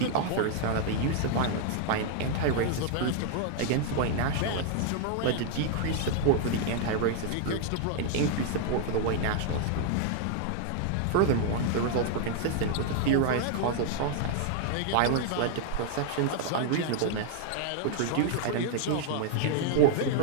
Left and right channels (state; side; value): different; both; correlation 0.00